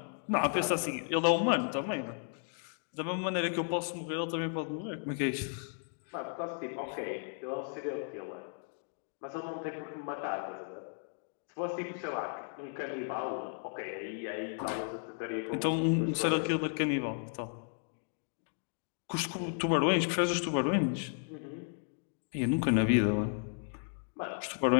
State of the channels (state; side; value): silent; right; 55 dB below the other